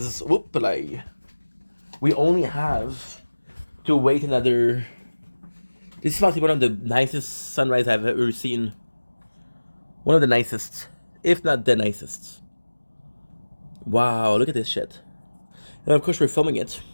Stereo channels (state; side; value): inverted; both; correlation -1.00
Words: whoop-a-lay. We only have to wait another. This is probably one of the nicest sunrise I've ever seen. One of the nicest, if not the nicest. Wow, look at this shit. And of course we're filming it.